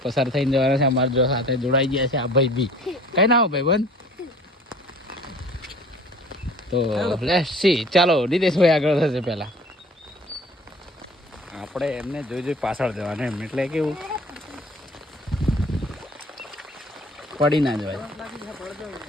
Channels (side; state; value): both; normal; correlation 0.48